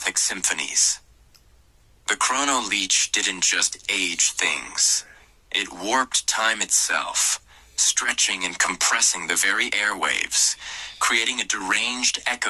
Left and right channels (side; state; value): both; identical; correlation 1.00